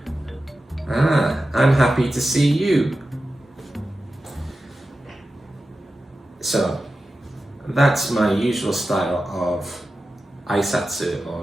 I'm happy to see you. So, that's my usual style of aisatsu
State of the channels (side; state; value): both; normal; correlation 0.93